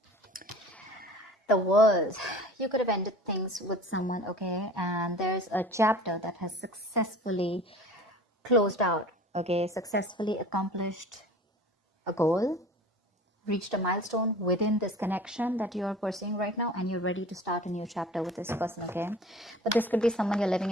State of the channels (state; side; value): normal; both; correlation 0.42